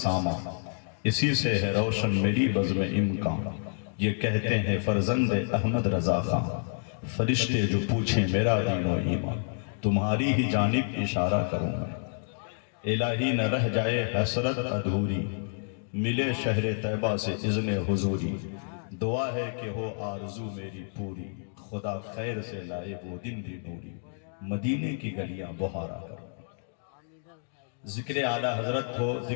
اسی سے ہے روشن میری بزم امکان۔ یہ کہتے ہیں فرزند احمد رضا خان، فرشتے جو پوچھیں میرا دین و ایمان، تمہاری ہی جانب اشارہ کروں میں۔ الہی نہ رہ جائے حسرت ادھوری، ملے شہر طیبہ سے اذن حضوری۔ دعا ہے کہ ہو آرزو میری پوری، خدا خیر سے لائے وہ دن بھی نوری، مدینے کی گلیاں بہارا کرو۔ ذکر اعلیٰ حضرت ہو،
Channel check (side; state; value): right; silent; digital silence